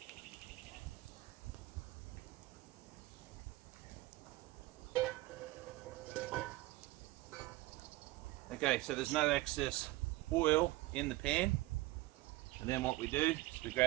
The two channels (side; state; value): left; quieter; 19.0 dB